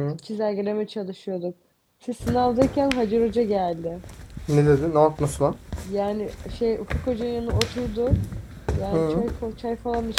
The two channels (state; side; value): identical; both; correlation 1.00